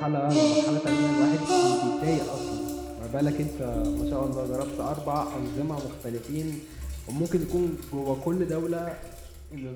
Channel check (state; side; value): identical; both; correlation 1.00